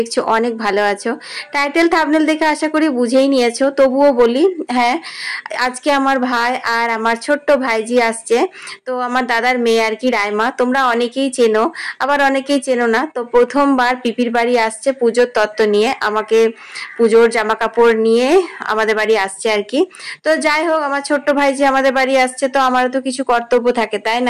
অনেক ভালো আছো টাইটেল থাম্বনেল দেখে আশা করি বুঝেই নিয়েছো তবুও বলি হ্যাঁ আজকে আমার ভাই আর আমার ছোট্ট ভাইজি আসছে তো আমার দাদার মেয়ে আর কি রাইমা তোমরা অনেকেই চেনো আবার অনেকেই চেনো না তো প্রথমবার পিপির বাড়ি আসছে পুজোর তত্ত্ব নিয়ে আমাকে পুজোর জামা কাপড় নিয়ে আমাদের বাড়ি আসছে আর কি তো যাই হোক আমার ছোট্ট ভাইজি আমাদের বাড়ি আসছে তো আমারও তো কিছু কর্তব্য থাকে তাই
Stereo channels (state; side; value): identical; both; correlation 1.00